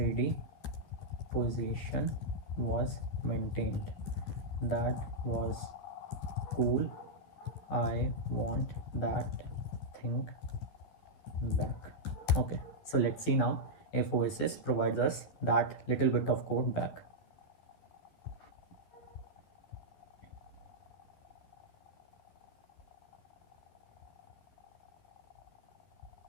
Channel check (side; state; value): right; late; 12 ms